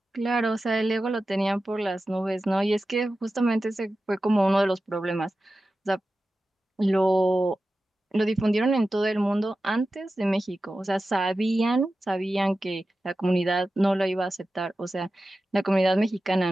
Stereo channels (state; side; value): normal; both; correlation 0.94